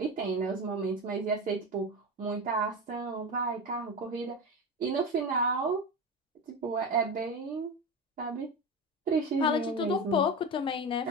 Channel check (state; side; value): normal; both; correlation 0.22